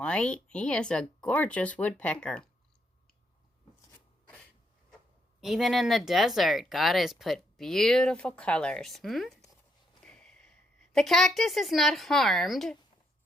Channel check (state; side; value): normal; both; correlation 0.76